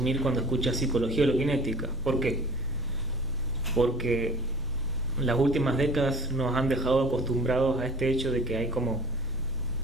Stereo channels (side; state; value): both; normal; correlation 0.45